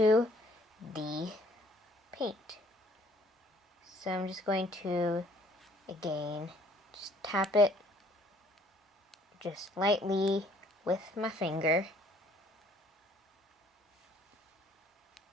the paint. So I'm just going to, again, just tap it just lightly with my finger.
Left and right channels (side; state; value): both; normal; correlation 0.60